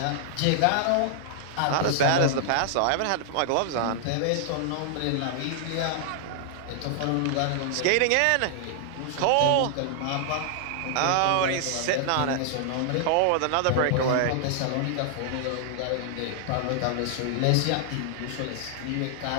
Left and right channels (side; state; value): both; different; correlation 0.00